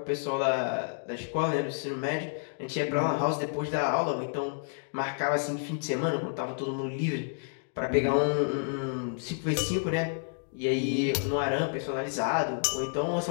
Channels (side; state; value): right; silent; digital silence